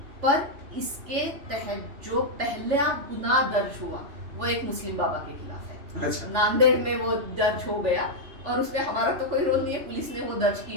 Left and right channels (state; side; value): late; left; 3.4 ms